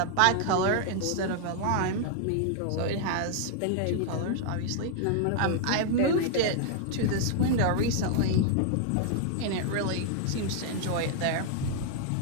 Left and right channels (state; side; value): different; both; correlation -0.01